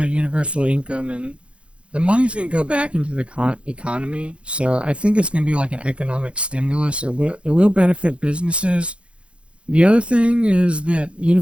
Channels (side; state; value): left; late; 0.059 ms